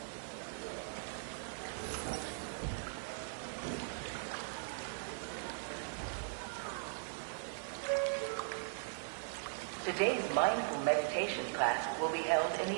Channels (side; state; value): left; silent; digital silence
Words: Today's mindful meditation class will be held in